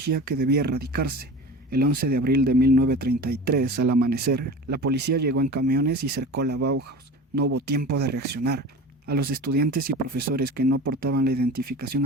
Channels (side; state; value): both; normal; correlation 0.35